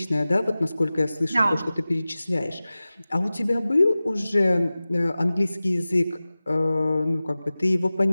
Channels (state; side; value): inverted; both; correlation -0.97